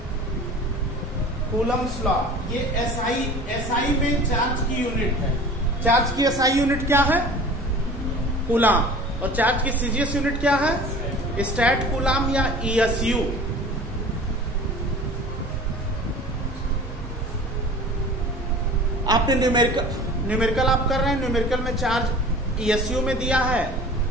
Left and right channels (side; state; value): both; normal; correlation 0.42